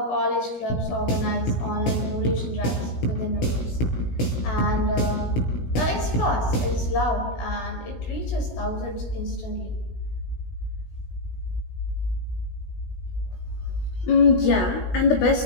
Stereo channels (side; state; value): right; late; 16 ms